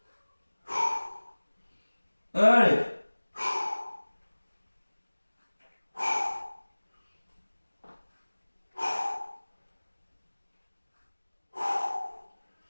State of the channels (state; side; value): inverted; both; correlation -1.00